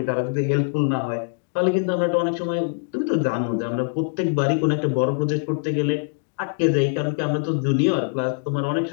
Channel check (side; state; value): right; silent; digital silence